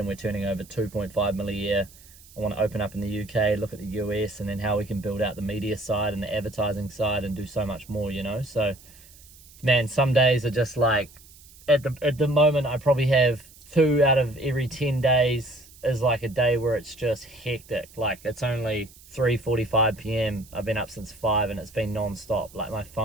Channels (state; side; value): noise; right; hiss, 23 dB below the sound